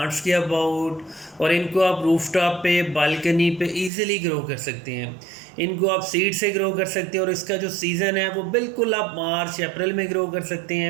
के अबाउट, और इनको आप रूफटॉप पे, बालकनी पे इजीली ग्रो कर सकते हैं। इनको आप सीड से ग्रो कर सकते हैं, और इसका जो सीज़न है वो बिल्कुल आप मार्च अप्रैल में ग्रो कर सकते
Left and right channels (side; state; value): left; drops out; at 3.9 s